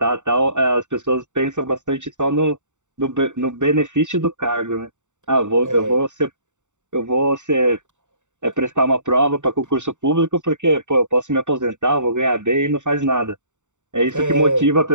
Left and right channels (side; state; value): left; late; 0.84 ms